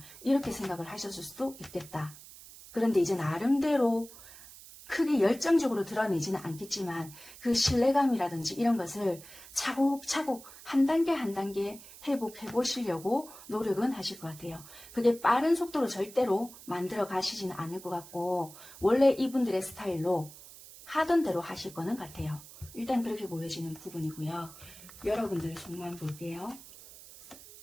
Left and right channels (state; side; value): noise; right; hiss, 18 dB below the sound